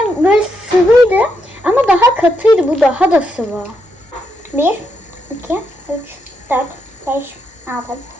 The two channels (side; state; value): both; normal; correlation 0.80